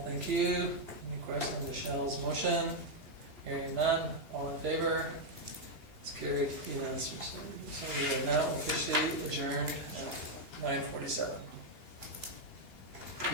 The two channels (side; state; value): left; late; 3.0 ms